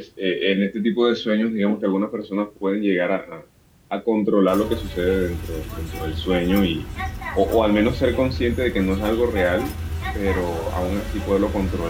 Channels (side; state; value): both; identical; correlation 1.00